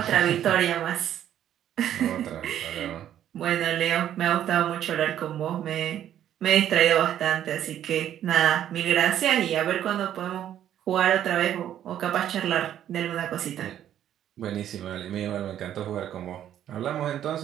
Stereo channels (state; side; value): quieter; left; 10.9 dB